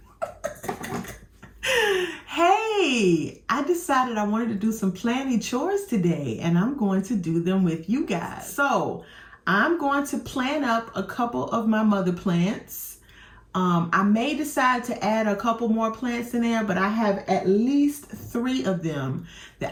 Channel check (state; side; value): identical; both; correlation 1.00